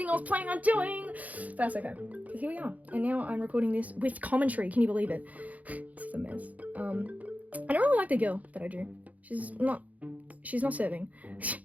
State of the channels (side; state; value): left; late; 0.074 ms